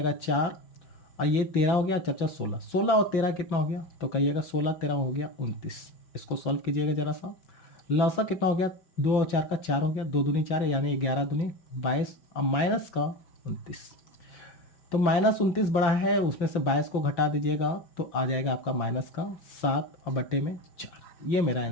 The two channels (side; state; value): right; late; 5.8 ms